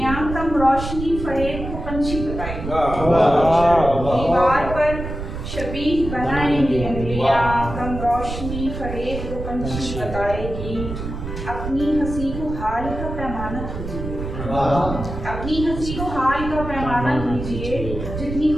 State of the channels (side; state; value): right; noise; rumble, 7 dB below the sound